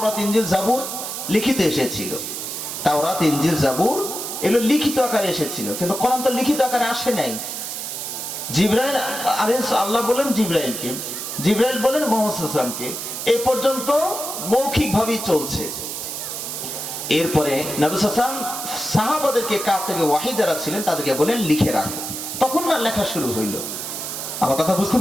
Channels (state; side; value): noise; right; hiss, 6 dB below the sound